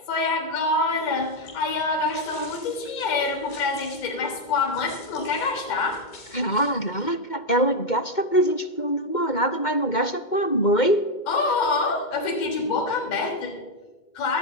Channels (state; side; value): late; right; 2.1 ms